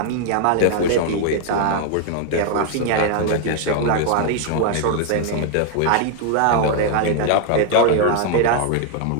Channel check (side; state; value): both; different; correlation 0.00